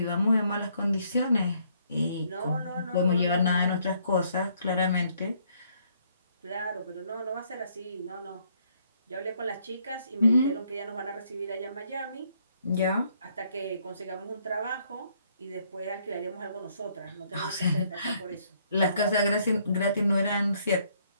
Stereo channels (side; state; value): both; inverted; correlation -0.68